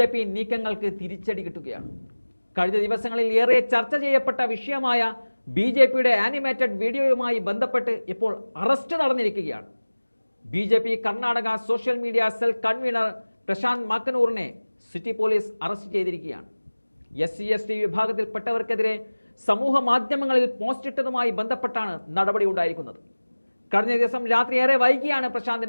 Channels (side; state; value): both; inverted; correlation -1.00